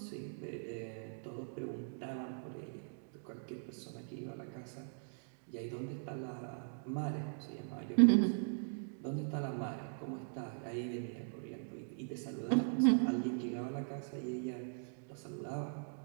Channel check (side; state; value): left; silent; digital silence